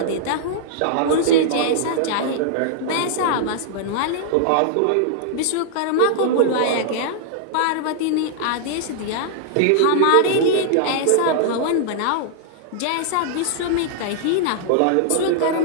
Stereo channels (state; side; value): different; both; correlation -0.01